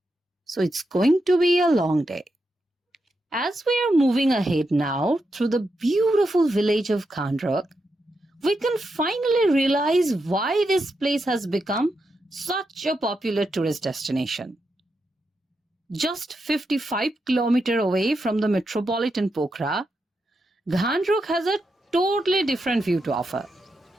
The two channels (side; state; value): both; normal; correlation 0.85